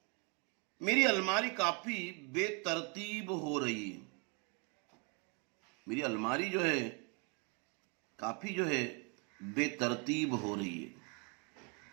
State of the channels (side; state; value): left; quieter; 34.5 dB